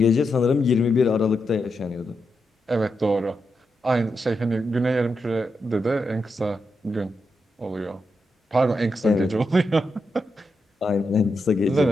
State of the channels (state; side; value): normal; both; correlation 0.85